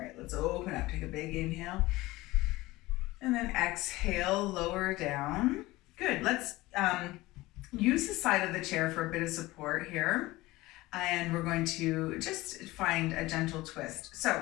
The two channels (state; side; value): quieter; right; 19.3 dB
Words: let's open up. Take a big inhale. And then exhale, lower down. Good, let's use the side of the chair for a bit of support here. And we're going to just find a gentle twist.